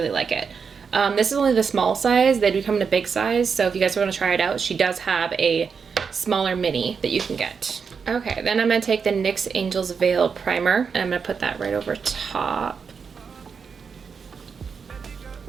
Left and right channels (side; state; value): left; quieter; 5.9 dB